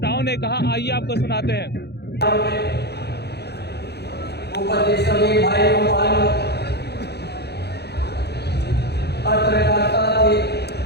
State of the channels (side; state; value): right; late; 0.48 ms